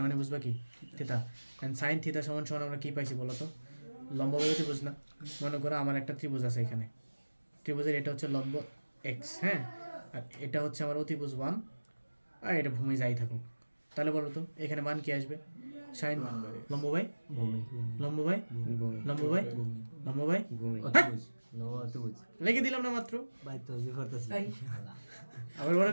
মানে বুঝবা কি থিটা অ্যান্ড সাইন থিটা সমান সমান আমরা কী পাইছি বলো তো লম্ব বাই ত্রিভুজ না মনে করো আমার একটা ত্রিভুজ আছে এখানে ত্রিভুজের এটা হচ্ছে লম্ব এক্স হ্যাঁ আর এটা হচ্ছে আমার অতিভুজ 1 আর এটা ভূমি যাই থাকুক তাহলে বলো তো এখানে মান কি আসবে সাইন লম্ব বাই ভূমি লম্ব বাই লম্ব বাই লম্ব বাই অতিভুজ লম্ব অতিভুজ লিখে দিলাম না মাত্র ভাই তো যে করতেছি আবার ওরা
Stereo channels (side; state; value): both; inverted; correlation -1.00